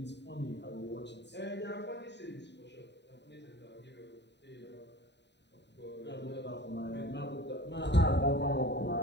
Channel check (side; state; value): right; late; 0.50 ms